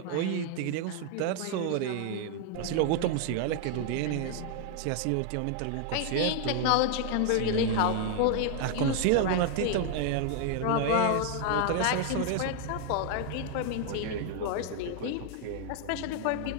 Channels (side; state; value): both; different; correlation 0.00